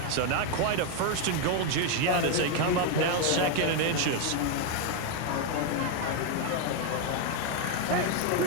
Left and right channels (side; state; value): both; different; correlation 0.01